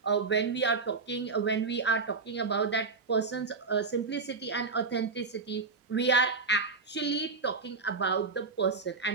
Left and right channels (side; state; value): left; quieter; 4.4 dB